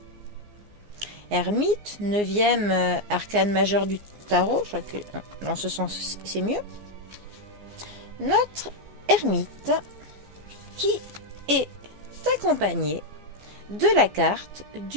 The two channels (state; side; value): late; left; 14 ms